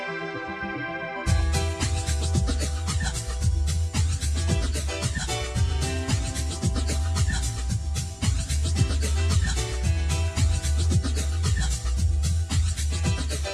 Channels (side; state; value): both; identical; correlation 1.00